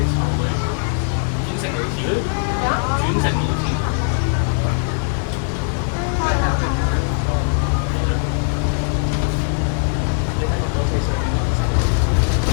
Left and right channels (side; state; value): right; silent; 66 dB below the other